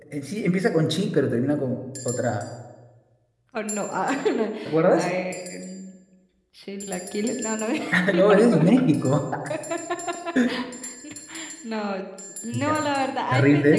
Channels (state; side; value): identical; both; correlation 1.00